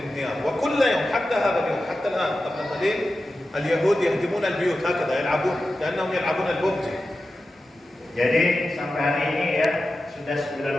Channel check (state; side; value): normal; both; correlation 0.92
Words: وكل يوم حتى هذا اليوم حتى الآن قبل قليل اليهود يهدمون البيوت هكذا يلعبون كأنهم يلعبون الببجي. Jadi sampai hari ini ya sudah